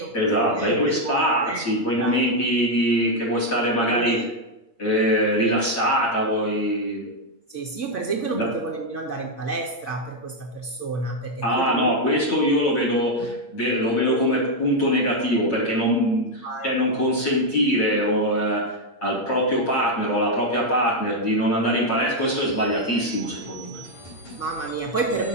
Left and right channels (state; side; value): late; right; 8.6 ms